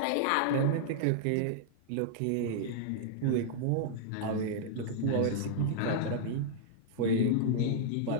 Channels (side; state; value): both; different; correlation -0.01